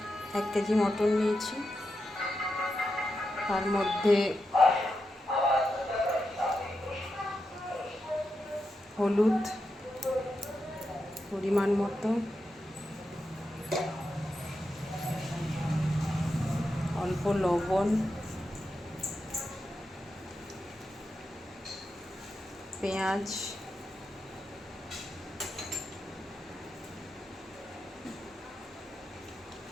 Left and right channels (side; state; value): both; normal; correlation 0.87